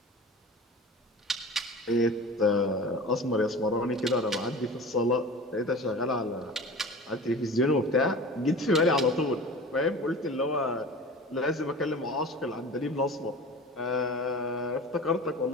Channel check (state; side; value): normal; both; correlation 0.36